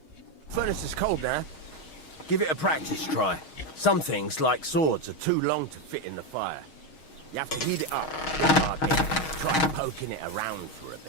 Furnace is cold now. Give it a practice try. Some things, like swords, are too long to fit in the fire. You have to heat it up bit by bit. Try poking it around for a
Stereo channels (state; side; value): late; right; 6.4 ms